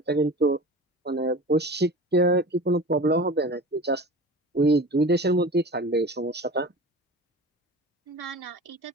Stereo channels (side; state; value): both; normal; correlation 0.36